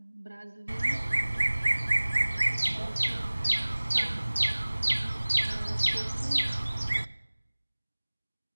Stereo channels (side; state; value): both; inverted; correlation -1.00